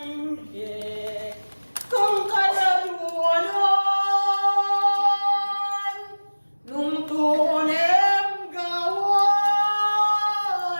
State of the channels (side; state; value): both; inverted; correlation -1.00